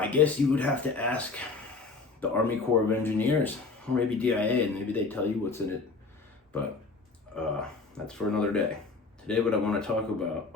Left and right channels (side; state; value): right; quieter; 4.1 dB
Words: guess you would have to ask the Army Corps of Engineers, or maybe DIA, and maybe they tell you what's in it. But that's for another day. Today what I want to talk about